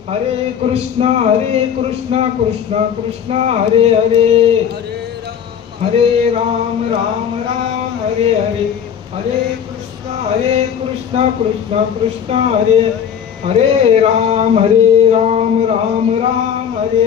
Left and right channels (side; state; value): right; quieter; 8.3 dB